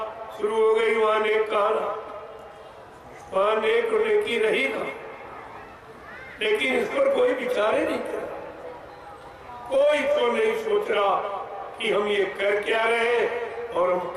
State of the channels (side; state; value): both; identical; correlation 1.00